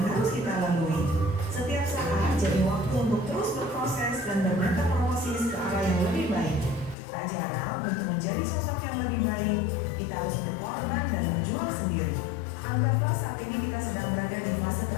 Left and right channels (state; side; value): drops out; right; at 7.0 s